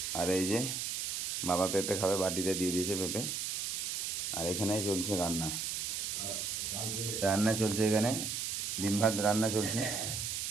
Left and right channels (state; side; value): noise; right; hiss, 2 dB below the sound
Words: আর এই যে বাবা পেঁপে খাবে, বাটিতে দিয়ে দিয়েছে পেঁপে। আর এখানে চলছে রান্না, রান্না চলছে এখানে ডিম ভাত রান্না চলছে।